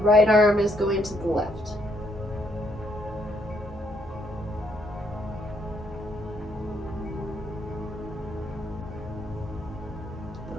arm is going to the left.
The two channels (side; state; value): both; normal; correlation 0.72